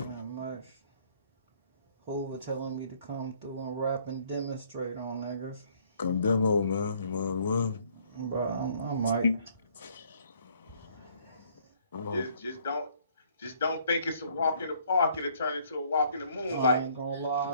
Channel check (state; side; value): inverted; both; correlation -0.63